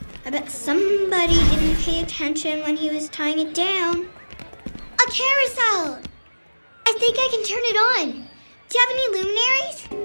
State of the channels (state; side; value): inverted; both; correlation -1.00